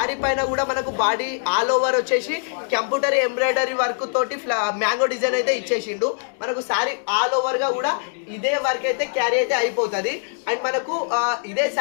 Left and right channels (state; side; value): silent; right; digital silence